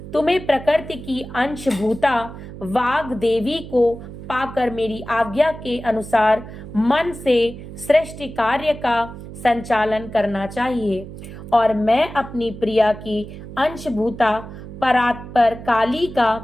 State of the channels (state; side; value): noise; right; hum, 13 dB below the sound